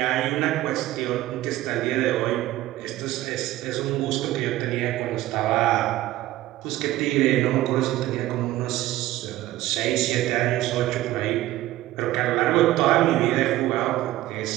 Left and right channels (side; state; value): left; quieter; 15.7 dB